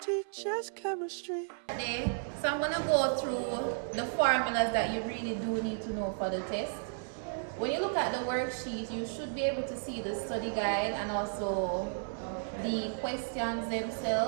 chemistry. Today, so I'm going to go through the formulas that you really do need to know for the test. When you look at the worksheet, you should be able to see the study guide and also the questions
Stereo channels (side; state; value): left; silent; 56 dB below the other